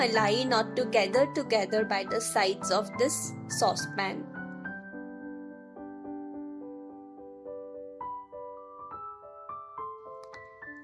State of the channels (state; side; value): identical; both; correlation 1.00